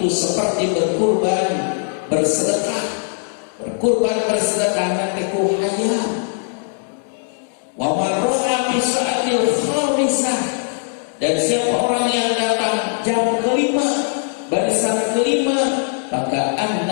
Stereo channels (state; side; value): silent; right; digital silence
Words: seperti berkurban bersedekah. Berkurban bersedekah nanti ku hayam. Wa man roha bisa'atil khamisah, dan siapa orang yang datang jam kelima, barisan kelima, maka